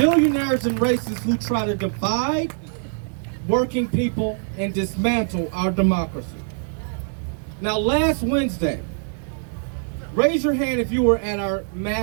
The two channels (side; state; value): left; silent; digital silence